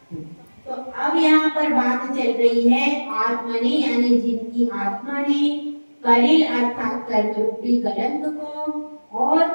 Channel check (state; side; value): inverted; both; correlation -1.00